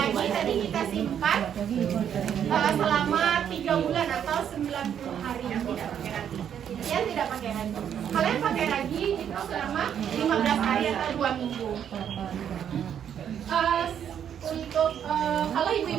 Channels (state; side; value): quieter; left; 9.0 dB